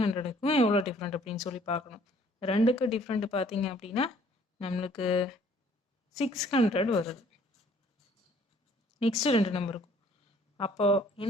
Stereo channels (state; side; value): normal; both; correlation 0.59